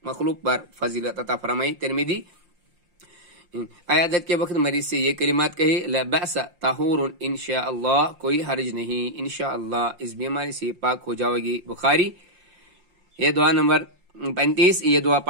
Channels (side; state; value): left; late; 5.7 ms